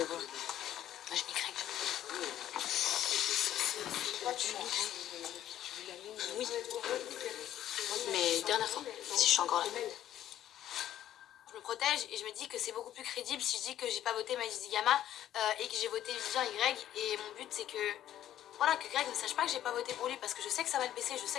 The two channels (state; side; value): quieter; right; 12.0 dB